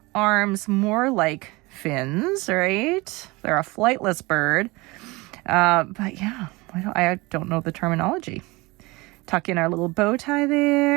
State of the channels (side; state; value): left; quieter; 23.5 dB